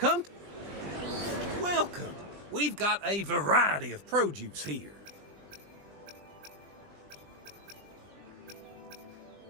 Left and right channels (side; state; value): left; late; 20 ms